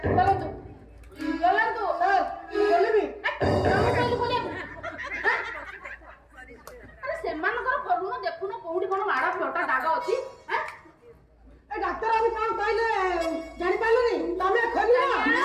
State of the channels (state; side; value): identical; both; correlation 1.00